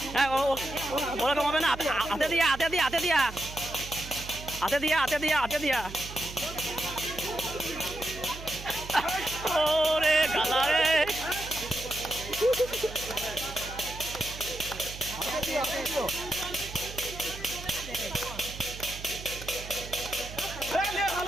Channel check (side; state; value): right; noise; hum, 12 dB below the sound